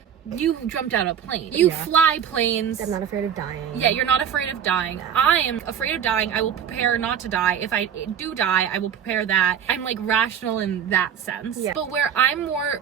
jumped out of a plane. You fly planes. I'm not afraid of dying. Yeah, you're not afraid of dying. No. I am afraid of dying. I will prepare not to die. If I do die, I will prepare that. I'm like rational in that sense. Yeah. But where I'm more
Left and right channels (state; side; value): quieter; left; 8.6 dB